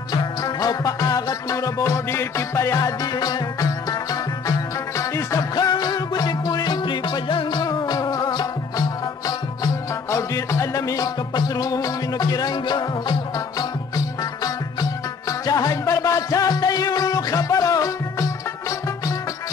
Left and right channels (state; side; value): quieter; right; 5.4 dB